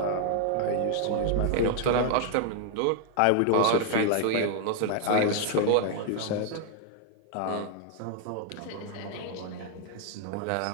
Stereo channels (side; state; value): both; different; correlation 0.00